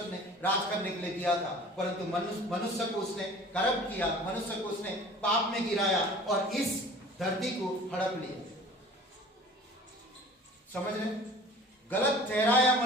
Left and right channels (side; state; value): both; normal; correlation 0.45